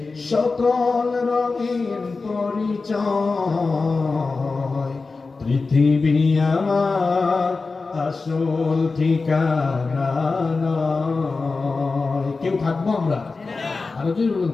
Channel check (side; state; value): right; quieter; 4.0 dB